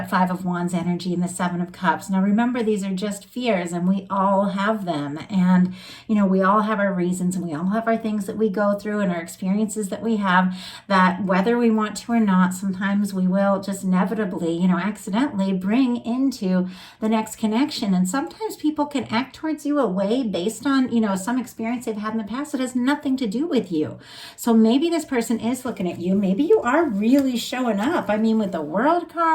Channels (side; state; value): both; identical; correlation 1.00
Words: Five of Wands energy and the Seven of Cups. Now remember, these are just fears, and we all have them. And, we all have our reasons, and we all have our things that we go through and our experiences that we have, that whether we want to or not, sometimes we will just inevitably, accidentally bring into the next connection. And sometimes people can act towards you a way based on, some experience they've had in the past that has nothing to do with you. So maybe this person is looking at you. Maybe you are really showing up. I mean, with the World